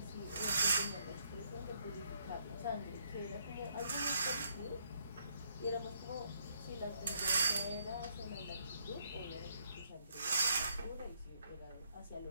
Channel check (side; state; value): both; inverted; correlation -0.71